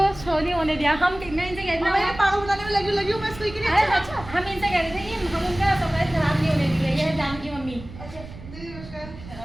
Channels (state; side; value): noise; right; rumble, 15 dB below the sound